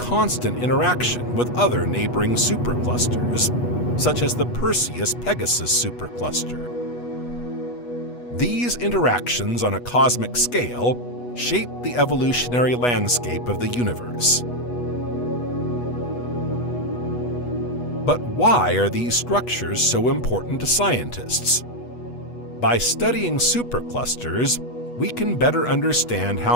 interaction with other neighboring superclusters, such as the Perseus-Pegasus supercluster. These interactions on a cosmic scale shape the evolutionary landscape of the universe. But why are these structures so important to scientists? By studying superclusters, we can better understand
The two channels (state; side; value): late; right; 8.2 ms